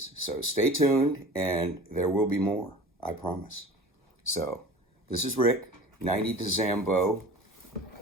So stay tuned and there will be more, I promise. So this is Rick, 90 to Zambo.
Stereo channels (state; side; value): normal; both; correlation 0.40